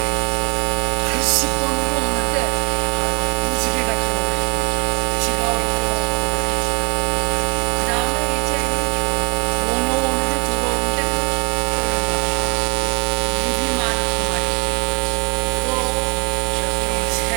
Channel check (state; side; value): quieter; left; 31.4 dB